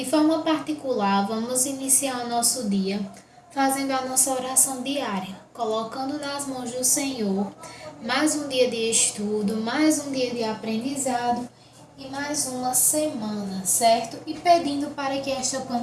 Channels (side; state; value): both; identical; correlation 1.00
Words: forma particular, vamos iniciar o nosso dia fazendo a nossa oração diária, colocando nas mãos do Senhor mais um dia de estudo, mais um dia de aprendizado e mais uma semana, certo? E pedindo para que esta